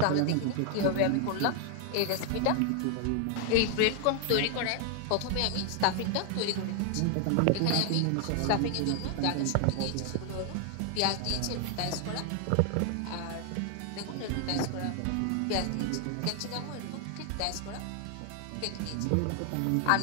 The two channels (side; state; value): both; different; correlation 0.00